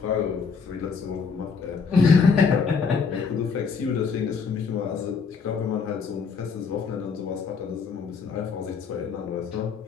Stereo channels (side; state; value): right; quieter; 5.5 dB